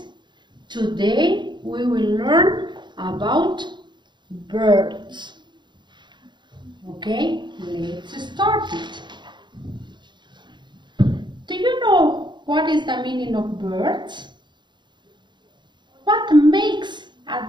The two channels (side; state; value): left; late; 0.22 ms